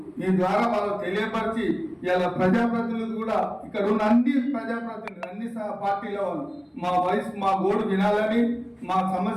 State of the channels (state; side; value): identical; both; correlation 1.00